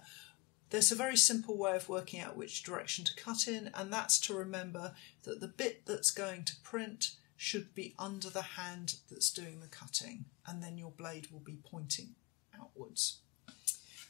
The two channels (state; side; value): quieter; right; 26.1 dB